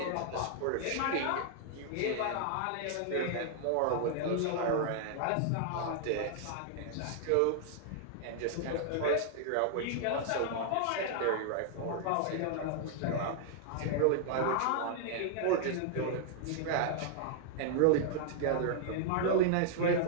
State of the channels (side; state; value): both; different; correlation -0.01